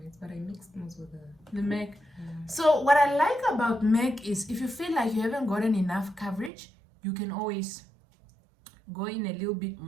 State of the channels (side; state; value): left; drops out; at 6.5 s